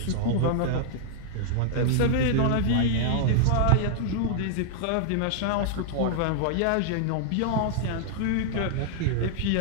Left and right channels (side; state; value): both; different; correlation -0.01